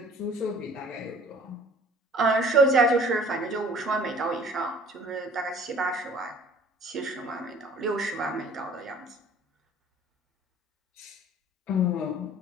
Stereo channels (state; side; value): normal; both; correlation 0.51